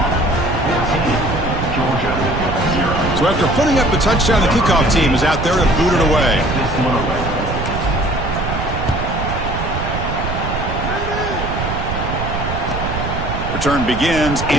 So after putting up the touchdown, the kickoff team is out there to boot it away. Return begins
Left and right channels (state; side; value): noise; right; rumble, 4 dB below the sound